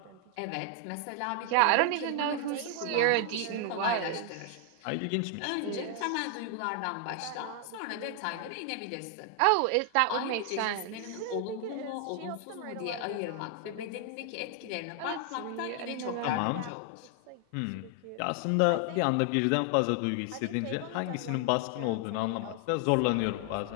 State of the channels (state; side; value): different; both; correlation 0.00